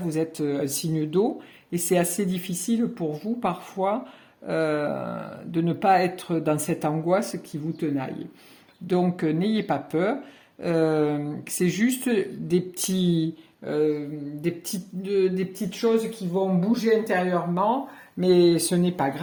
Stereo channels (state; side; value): identical; both; correlation 1.00